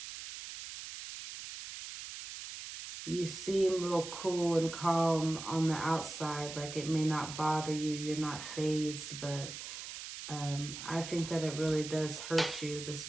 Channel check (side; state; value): right; noise; hiss, 9 dB below the sound